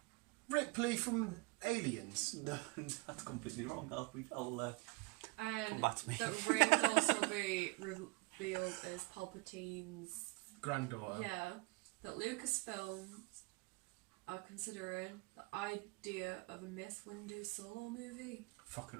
Ripley from Aliens. No, that's completely wrong. I'll come And back to me. that Rey would also be revealed as Palpatine's. Granddaughter. Yeah, that Lucasfilms are considering the idea of a Mace Windu solo movie.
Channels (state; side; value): quieter; left; 27.5 dB